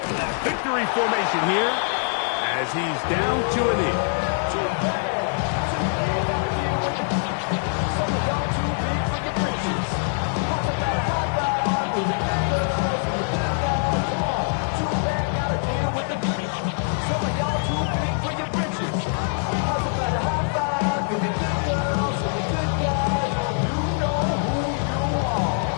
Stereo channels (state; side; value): silent; right; 57 dB below the other